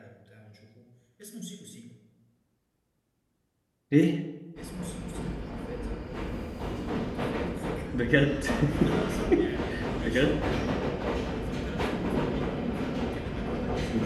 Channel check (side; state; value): both; identical; correlation 1.00